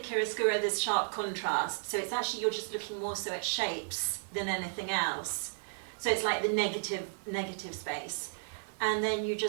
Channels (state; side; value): silent; left; digital silence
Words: there's sharp contrast, so it's actually you're just looking more so at shapes than anything else. So it's like the negative space. And then you